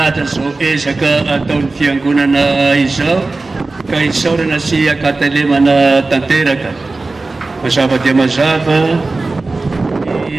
zao ezaka ataon'ny fiangonana izao ka isaorana sy akatelemana tanteraka. Mazava dia mazava ny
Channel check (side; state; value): left; quieter; 3.4 dB